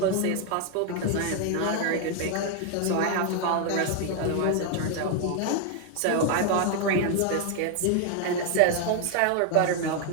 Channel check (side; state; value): both; different; correlation 0.01